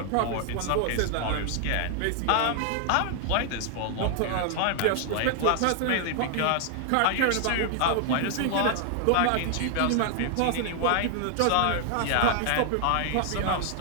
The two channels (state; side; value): different; both; correlation 0.00